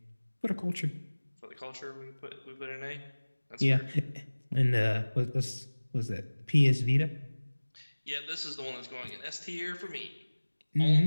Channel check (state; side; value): inverted; both; correlation -1.00